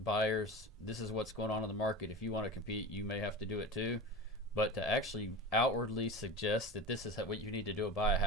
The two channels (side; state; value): both; normal; correlation 0.30